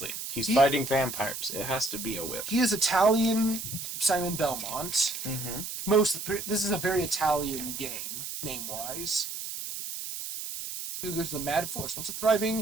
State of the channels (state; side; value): noise; right; hiss, 7 dB below the sound